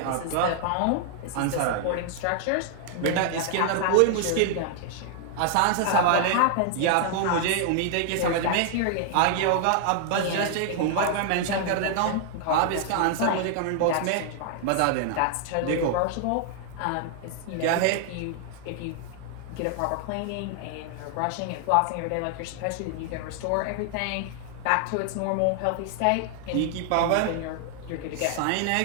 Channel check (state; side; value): different; both; correlation 0.00